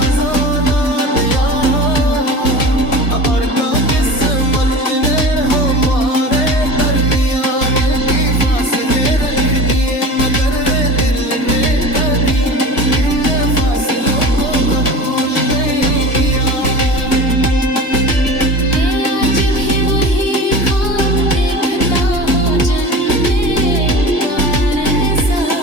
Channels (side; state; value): right; late; 1.6 ms